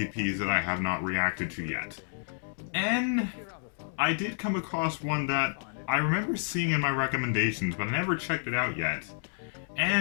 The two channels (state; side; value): silent; right; 58 dB below the other